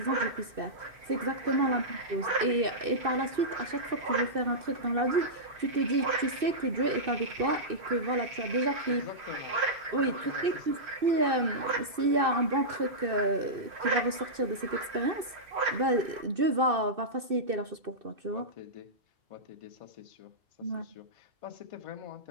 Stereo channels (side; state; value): left; late; 2.6 ms